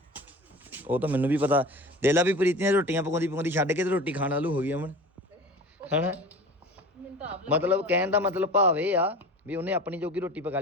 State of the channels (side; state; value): both; normal; correlation 0.36